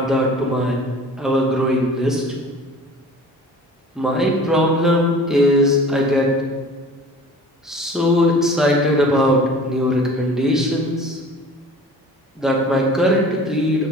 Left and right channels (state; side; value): normal; both; correlation 0.44